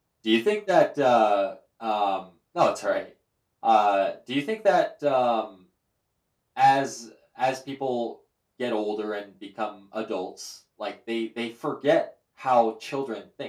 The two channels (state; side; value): identical; both; correlation 1.00